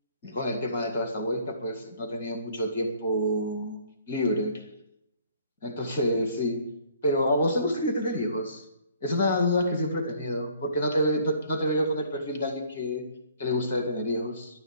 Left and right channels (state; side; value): inverted; both; correlation -0.58